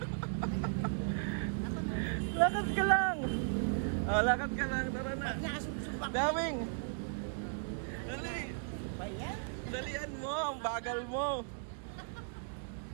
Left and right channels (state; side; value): silent; left; digital silence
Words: Lakad ka lang! Oh, lakad ka lang, tara na. Nasubsub ako. Daming! Dali! Ano ba yan? Dalian mo, ang bagal mo!